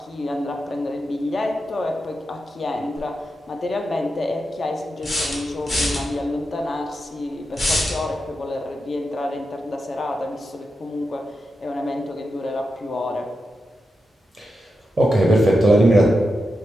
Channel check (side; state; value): both; normal; correlation 0.88